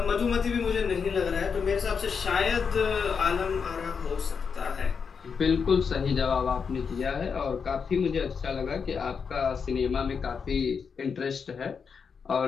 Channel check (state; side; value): quieter; right; 6.0 dB